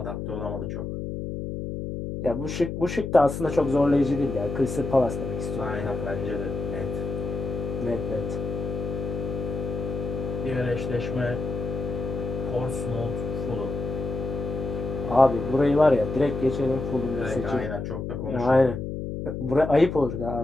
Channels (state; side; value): noise; left; hum, 5 dB below the sound